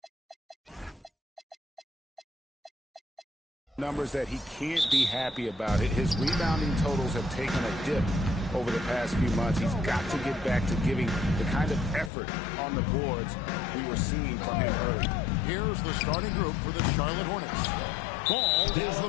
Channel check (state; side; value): drops out; right; at 12.1 s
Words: numbers that he can't be happy about. His rebounding totals have taken a dip over the past few months. He's got to get back to giving the kind of effort on the boards we were seeing from him early. Here's the starting group for the Charlotte Hornets. Ball is the